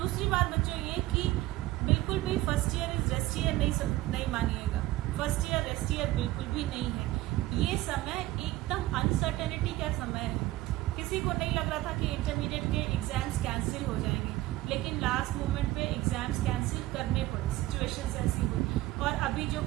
बात बच्चों ये कि बिल्कुल भी first year is rest year नहीं मानिएगा। फर्स्ट ईयर रेस्ट ईयर बिल्कुल भी नहीं है। ये समय एकदम अनसर्टेनिटी का समय है। किसी को नहीं लग रहा था कि इंटरमीडिएट के एग्जाम्स कैंसिल हो जाएंगे, लेकिन लास्ट मोमेंट पे एग्जाम्स कैंसिल करने पड़े, सिचुएशंस ऐसी हुई। और अभी जो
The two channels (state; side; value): quieter; left; 17.2 dB